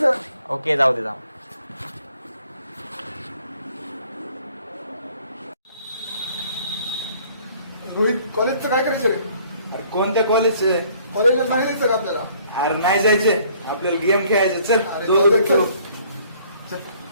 ओके जाऊ दे, जाऊ. रोहित, कॉलेजचं काय करायचं रे? अरे कोणत्या कॉलेजचे? कॉलेजला सांगितलं का आपल्याला? अरे नाही जायचे, आपल्याला गेम खेळायचे. चल अरे दोघं चल, खेळू. चल.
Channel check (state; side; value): inverted; both; correlation -0.60